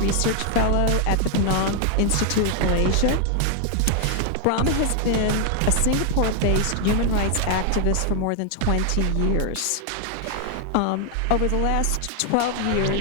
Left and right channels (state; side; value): different; both; correlation 0.00